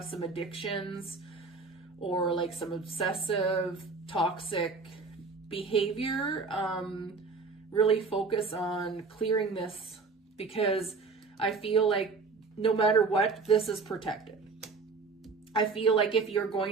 some addictions or like some obsessive, toxic behavior. Really focus on clearing this, because I feel like no matter what, this is protected. I feel like if you're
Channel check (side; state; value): left; quieter; 4.4 dB